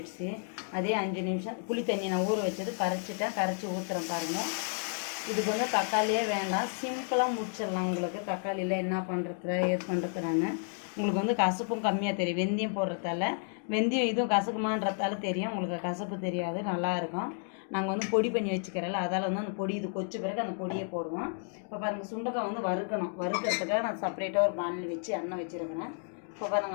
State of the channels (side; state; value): right; silent; 57 dB below the other